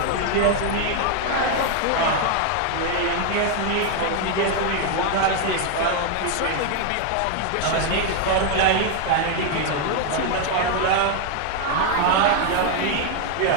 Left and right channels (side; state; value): both; different; correlation 0.01